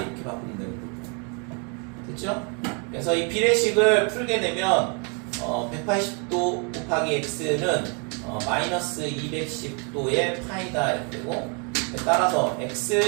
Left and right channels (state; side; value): quieter; left; 36.0 dB